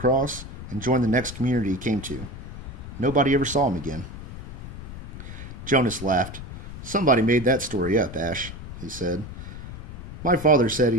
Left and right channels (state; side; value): noise; left; rumble, 10 dB below the sound